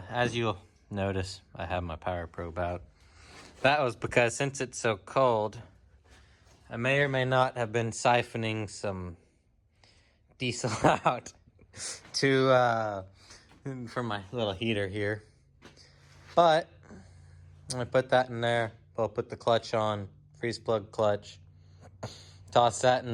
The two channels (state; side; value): identical; both; correlation 1.00